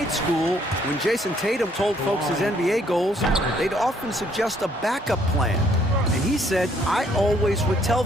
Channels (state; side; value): normal; both; correlation 0.66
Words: school, when Jason Tatum told folks his NBA goals, they'd often suggest a backup plan. And he said, I always would tell